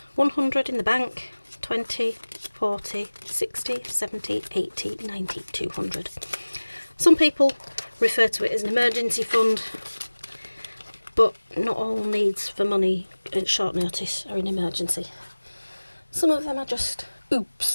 100 in the bank, 20, 40, 60, 70, 80, 90, 200. Some people refer to it as an emergency fund, but not all needs for money at short notice are an emergency. Some of them are just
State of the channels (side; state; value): both; inverted; correlation -1.00